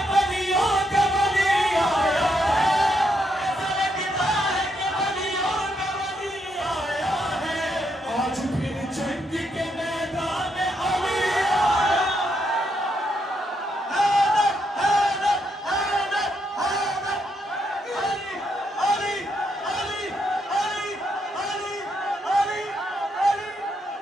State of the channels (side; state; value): both; normal; correlation 0.78